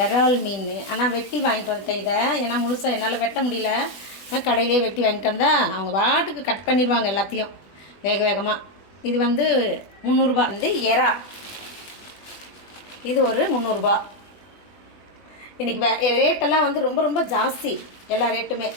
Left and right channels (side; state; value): right; late; 20 ms